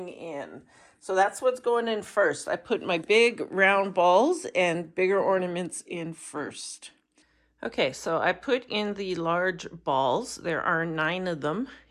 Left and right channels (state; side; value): identical; both; correlation 1.00